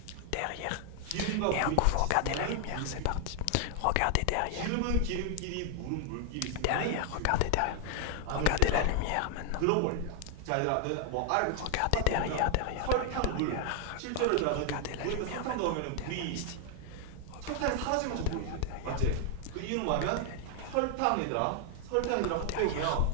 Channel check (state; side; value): different; both; correlation 0.00